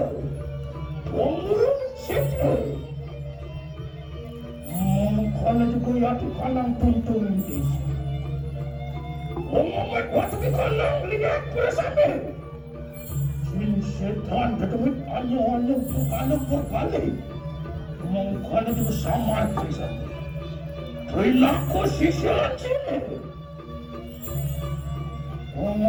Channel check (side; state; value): both; identical; correlation 1.00